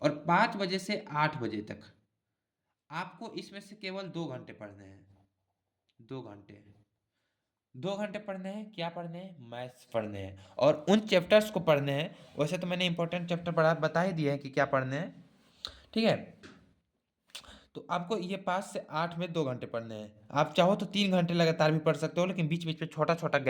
5 बजे से 8 बजे तक आपको इसमें से केवल 2 घंटे पढ़ने हैं। 2 घंटे, 2 घंटे पढ़ने हैं, क्या पढ़ने हैं, मैथ्स पढ़ने हैं, और उन चैप्टर्स को पढ़ने हैं। वैसे तो मैंने इंपॉर्टेंट चैप्टर बता ही दिए हैं कि क्या पढ़ने हैं। ठीक है, तो आपको ये 5 से 8 में 2 घंटे पढ़ने हैं। आप चाहो तो 3 घंटे लगातार भी पढ़ सकते हो, लेकिन बीच बीच में छोटा छोटा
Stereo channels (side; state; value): both; identical; correlation 1.00